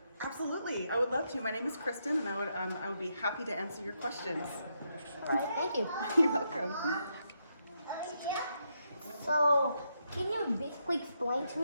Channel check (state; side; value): inverted; both; correlation -0.80